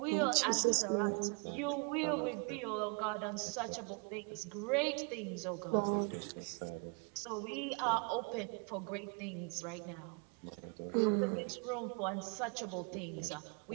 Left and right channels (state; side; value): quieter; left; 35.6 dB